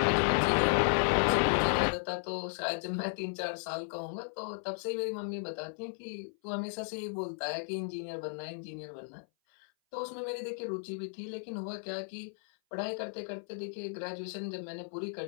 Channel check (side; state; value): right; silent; 55 dB below the other